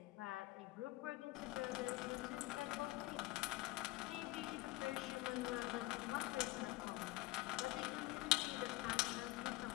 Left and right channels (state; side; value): quieter; right; 19.8 dB